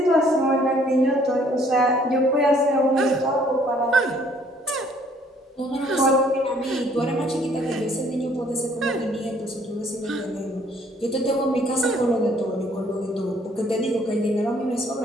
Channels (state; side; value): normal; both; correlation 0.61